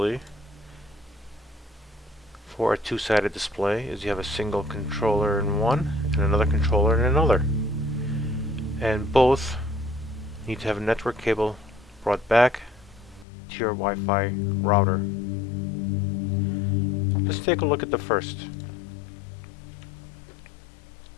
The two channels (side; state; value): right; drops out; at 13.2 s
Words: for a two-sided display is you have a single controller in one and another controller in another, and both need to have a network cable brought back to your Wi-Fi router. Let's take a look at the first.